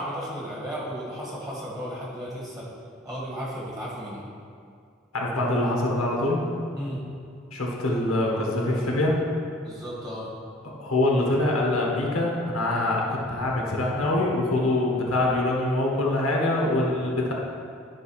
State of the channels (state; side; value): normal; both; correlation 0.49